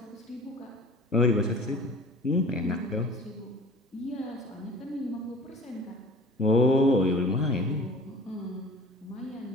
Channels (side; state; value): both; normal; correlation 0.44